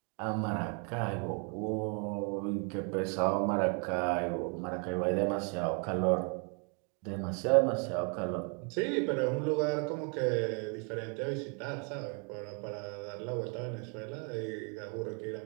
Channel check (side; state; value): left; quieter; 37.4 dB